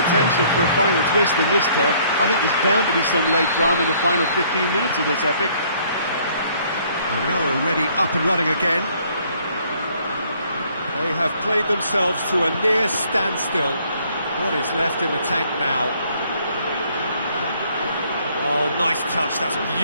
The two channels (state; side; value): inverted; both; correlation -0.62